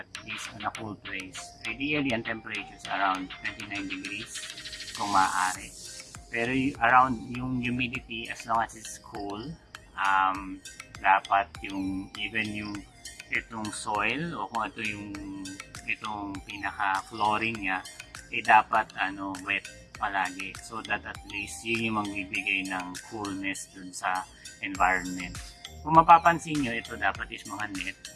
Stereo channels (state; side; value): identical; both; correlation 1.00